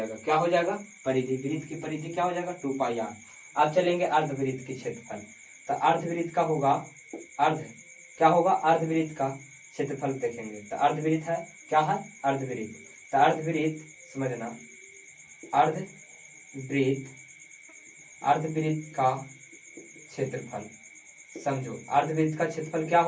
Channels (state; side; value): identical; both; correlation 1.00